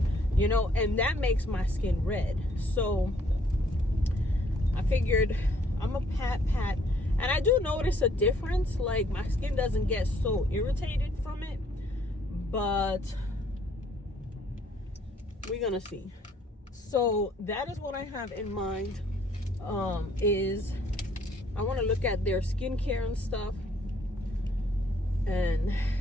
you know, and that makes my skin red. So I figured I'm a pat, and I do notice a difference. Like, my skin doesn't get so irritated from it, but we're gonna see. So that is what I have in mind. Is I want to look at their skincare and stuff, and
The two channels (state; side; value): normal; both; correlation 0.64